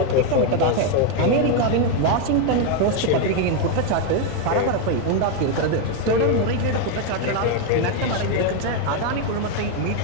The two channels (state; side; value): different; both; correlation 0.01